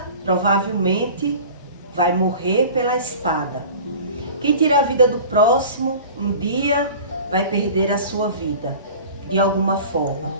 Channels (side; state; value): both; inverted; correlation -0.40